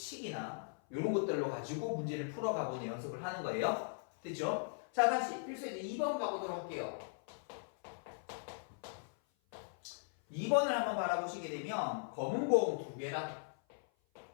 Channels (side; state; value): right; silent; 52 dB below the other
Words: 이런 것들로 가지고 문제를 풀어가보는 연습을 하는 거예요. 됐죠? 자 다시 필수에 이제 2번 가보도록 할게요. 2번을 한번 바라보시게 되면 검은 공 2개랑